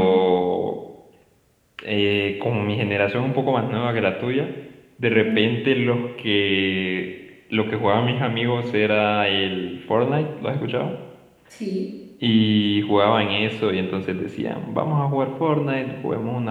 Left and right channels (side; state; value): both; identical; correlation 1.00